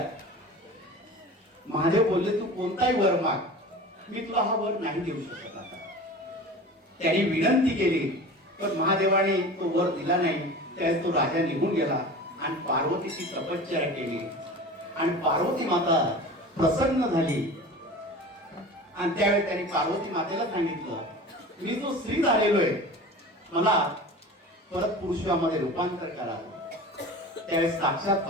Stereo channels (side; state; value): both; normal; correlation 0.36